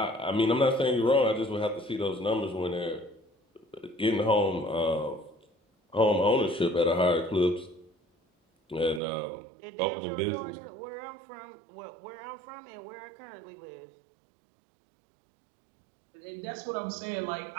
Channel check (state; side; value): drops out; left; at 9.0 s